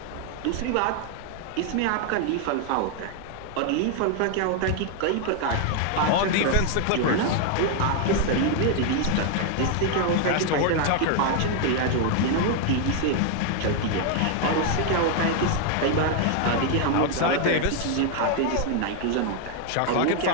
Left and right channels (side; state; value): both; different; correlation 0.00